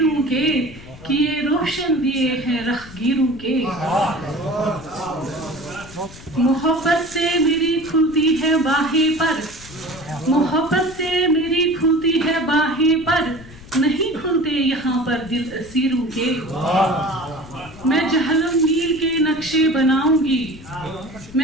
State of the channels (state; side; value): noise; left; rumble, 18 dB below the sound